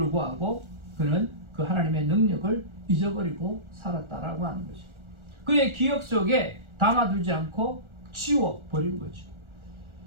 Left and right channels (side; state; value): left; late; 1.4 ms